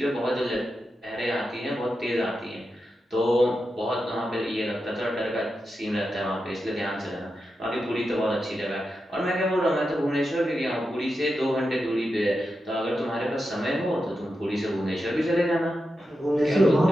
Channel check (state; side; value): normal; both; correlation 0.89